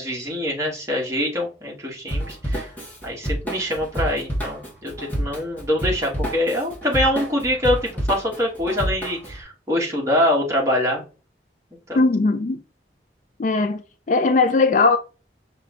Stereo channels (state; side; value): normal; both; correlation 0.34